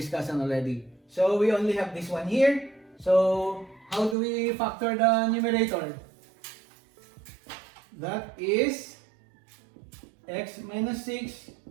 already. So we only have this one here. So how do we factor the numerator? That is x minus 6,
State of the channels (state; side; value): drops out; left; at 4.2 s